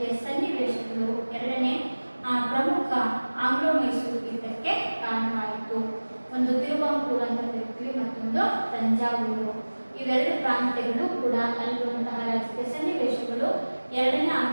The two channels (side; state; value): both; inverted; correlation -1.00